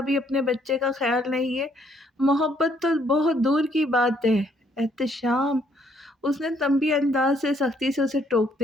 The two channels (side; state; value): both; normal; correlation 0.67